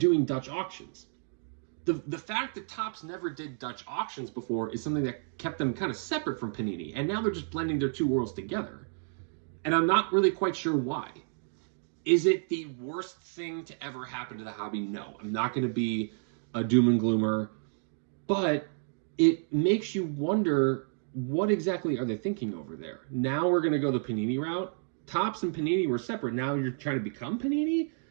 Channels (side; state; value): left; silent; 57 dB below the other